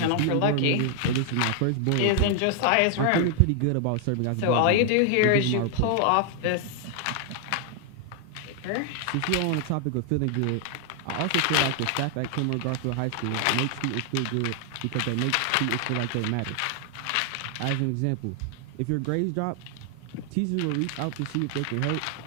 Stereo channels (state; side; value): different; both; correlation 0.00